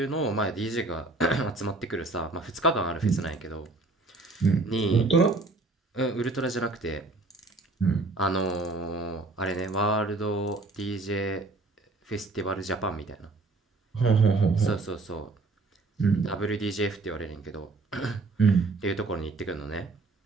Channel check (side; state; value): left; quieter; 3.3 dB